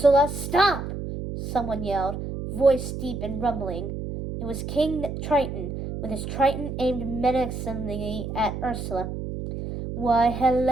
stop! Someone yelled, voice deep and rumbling. It was King Triton, with his trident aimed menacingly at Ursula. Why,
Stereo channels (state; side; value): noise; right; hum, 6 dB below the sound